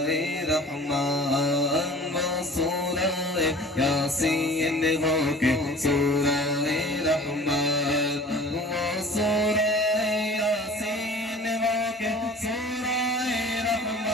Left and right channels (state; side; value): normal; both; correlation 0.44